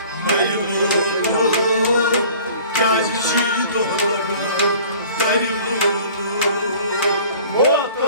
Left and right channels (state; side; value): inverted; both; correlation -0.48